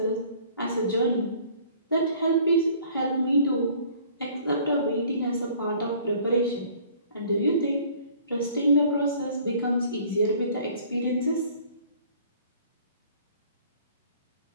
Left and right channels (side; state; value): both; inverted; correlation -0.53